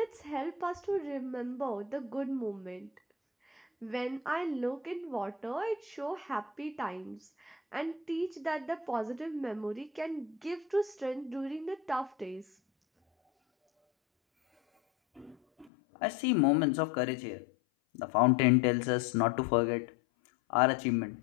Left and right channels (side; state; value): right; drops out; at 15.7 s